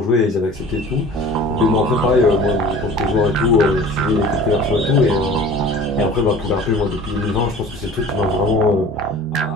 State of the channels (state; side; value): normal; both; correlation 0.43